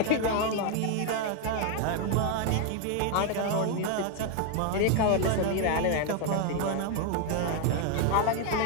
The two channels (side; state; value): both; different; correlation 0.00